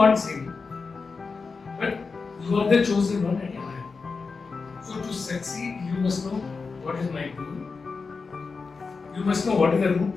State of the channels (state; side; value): quieter; right; 4.6 dB